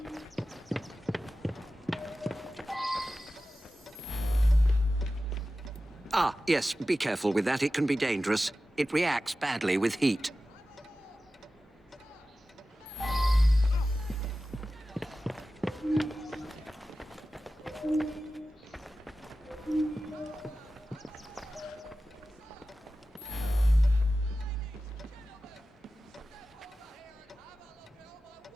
Ah, yes, be careful with that. It can be dangerous. It reacts badly with heat.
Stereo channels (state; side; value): normal; both; correlation 0.95